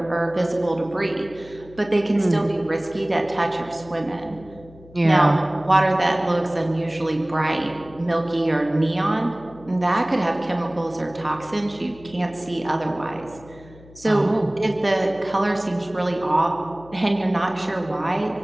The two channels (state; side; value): noise; left; hum, 22 dB below the sound